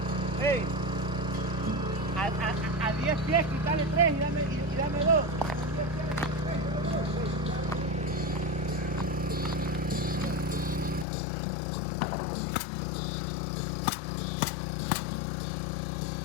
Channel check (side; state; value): right; drops out; at 11.1 s